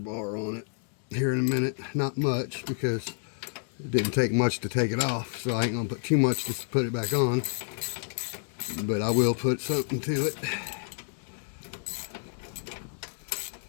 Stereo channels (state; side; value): silent; right; digital silence